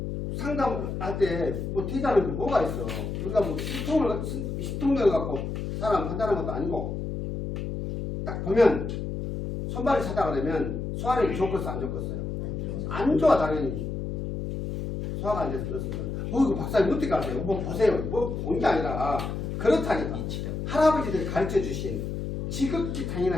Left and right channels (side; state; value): left; noise; hum, 4 dB below the sound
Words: 상담할 때 뭐 뒤다는 게 뭐가 있어. 우리가 뭐 신통을 갖고 사람 판단하는 것도 아니고 딱 보면 손발이 차다 그러면 소화력이 좋겠어 안 좋겠어요? 안 좋아 당연히. 소화가 안 돼서 그렇습니다. 이거 박사님 어떻게 아세요? 뭐 보세요. 뭐 본 게 아니라 그렇다니까. 할아버지들이 가르쳐주신 지극히